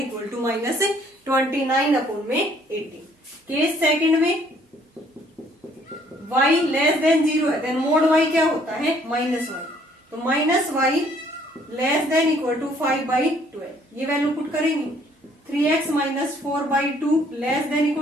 to minus 29/80। Case second में y लेस देन 0 है, देन मोड y क्या होता है माइनस y, तो minus y less than equal to 5/12, ये वैल्यू पुट करेंगे 3x minus 4/2 less than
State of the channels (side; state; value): both; normal; correlation 0.62